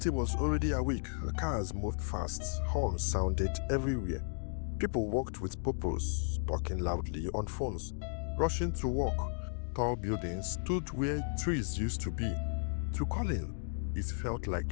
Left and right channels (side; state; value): right; silent; digital silence